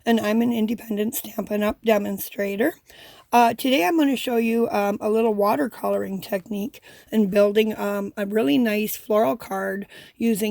and I'm an independent Stampin' Up! Demonstrator. Today I'm going to show you a little watercoloring technique and building a really nice floral card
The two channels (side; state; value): both; identical; correlation 1.00